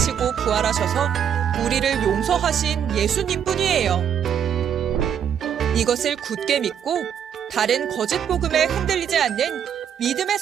부활하셔서 우리를 용서하신 예수님 뿐이에요. 이것을 굳게 믿고 다른 거짓 복음에 흔들리지 않는 믿음의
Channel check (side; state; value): left; quieter; 8.7 dB